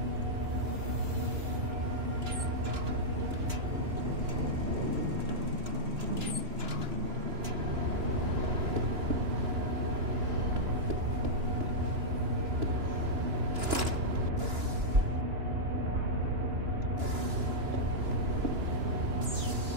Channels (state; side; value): late; left; 2.9 ms